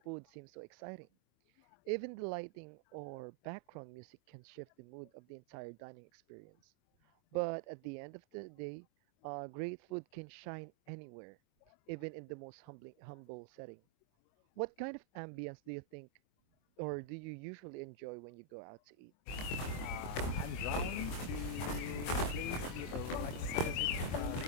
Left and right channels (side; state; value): right; late; 24 ms